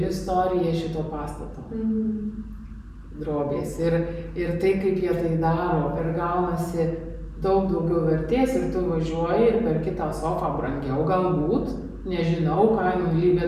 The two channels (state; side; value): identical; both; correlation 1.00